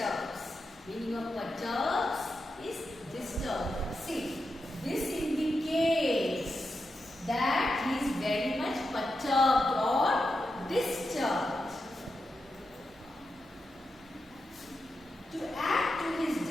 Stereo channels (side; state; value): both; normal; correlation 0.88